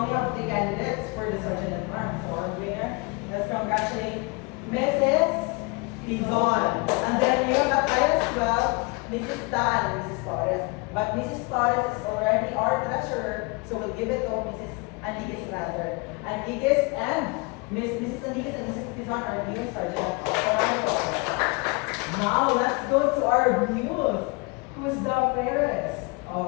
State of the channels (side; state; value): right; quieter; 28.5 dB